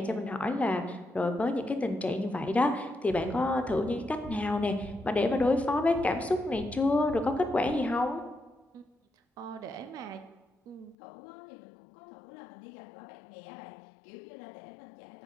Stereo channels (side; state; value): right; drops out; at 11.0 s